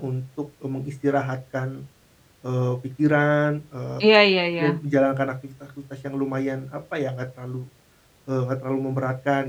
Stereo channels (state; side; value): identical; both; correlation 1.00